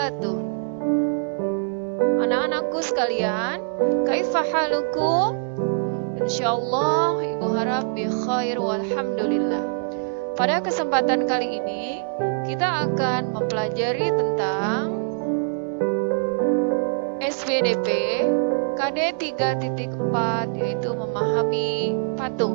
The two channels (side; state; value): left; silent; digital silence